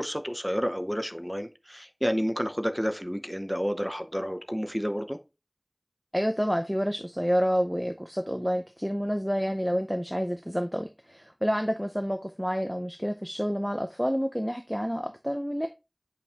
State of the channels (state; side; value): identical; both; correlation 1.00